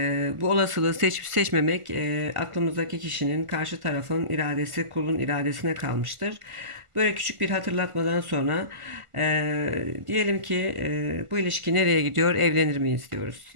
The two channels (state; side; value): late; left; 1.5 ms